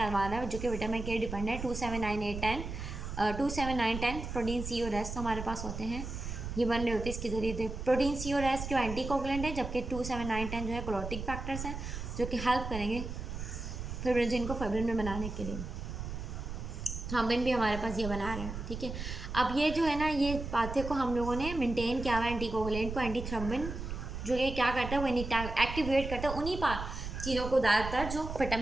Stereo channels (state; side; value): noise; right; rumble, 7 dB below the sound